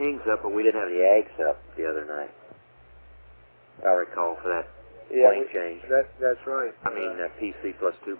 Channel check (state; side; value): inverted; both; correlation -1.00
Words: up, but we didn't have the ags up the other night. I recall for that plane change. That's right. I mean, PC plus 2